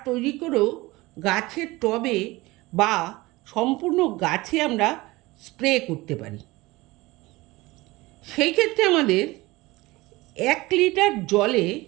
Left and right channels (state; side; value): quieter; left; 20.8 dB